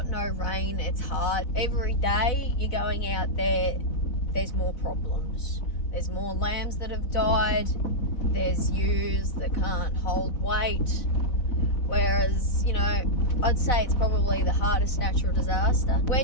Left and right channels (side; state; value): right; late; 4.0 ms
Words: no rain, it's hard. Every day you're going out there, there's more problems. There's more lambs that have died. There's ewes that can't hold weight. Whereas, you know, I'd say it's probably the hardest natural disaster.